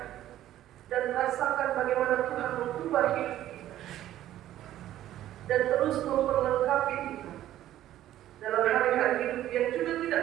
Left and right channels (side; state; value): left; quieter; 13.0 dB